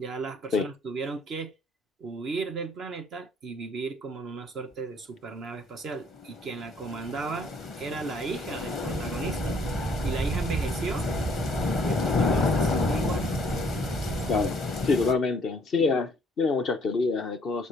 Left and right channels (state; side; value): normal; both; correlation 0.63